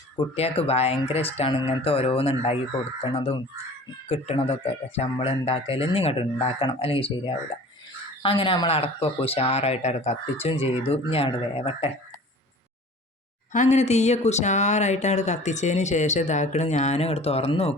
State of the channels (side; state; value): both; normal; correlation 0.44